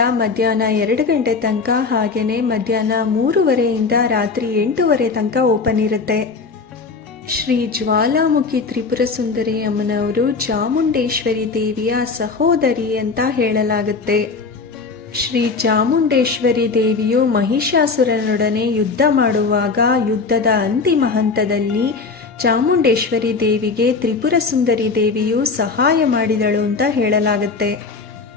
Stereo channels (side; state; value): right; quieter; 4.5 dB